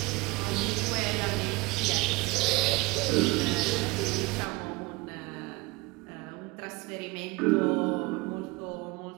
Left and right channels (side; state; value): left; quieter; 23.4 dB